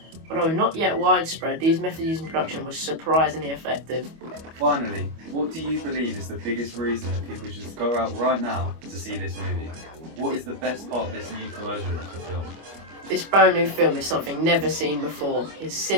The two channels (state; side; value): late; left; 25 ms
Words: Although not yet widespread, these methods used in production were surprisingly effective. Finally, what do you believe is the biggest reason that people should go out right now to see this movie? What is the best part of this new version of the film? This brand new film is something never seen before. It's